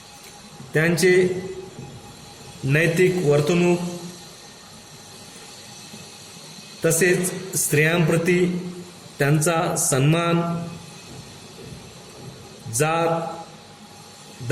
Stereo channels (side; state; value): both; identical; correlation 1.00